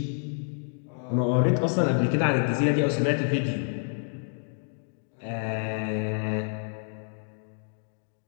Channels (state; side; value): silent; right; digital silence